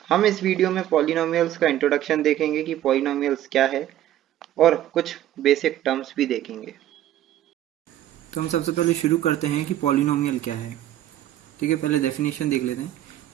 हम इस वीडियो में पॉलिनोमियल्स का इंट्रोडक्शन देखेंगे कि पॉलिनोमियल्स क्या है और कुछ बेसिक टर्म्स भी देखेंगे। तो हम सबसे पहले शुरू करते हैं कि पॉलिनोमियल क्या है। ठीक है, पहले डेफिनेशन देख लेते हैं।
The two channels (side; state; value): left; quieter; 12.6 dB